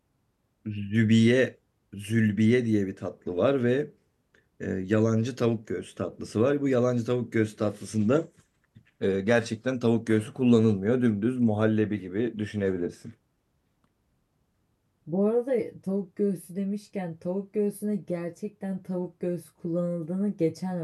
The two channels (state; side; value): identical; both; correlation 1.00